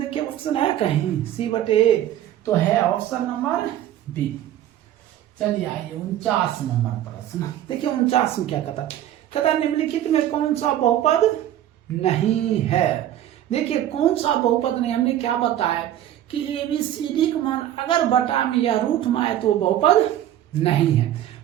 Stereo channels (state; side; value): quieter; left; 12.1 dB